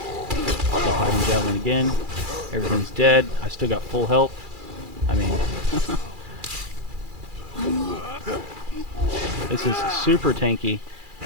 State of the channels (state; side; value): late; left; 2.4 ms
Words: Pop off biting javelin again. Everything's dead. I still got full health. I mean... This is super tanky,